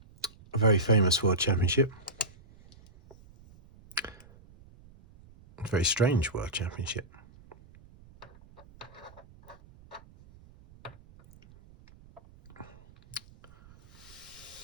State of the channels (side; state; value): right; noise; rumble, 24 dB below the sound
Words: A very famous World Championship. A very strange World Championship.